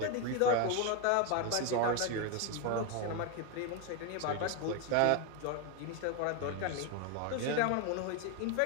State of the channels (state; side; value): different; both; correlation 0.02